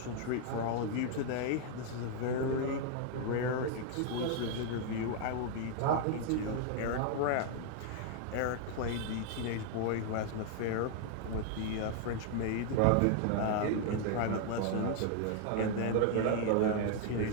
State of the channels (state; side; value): different; both; correlation 0.00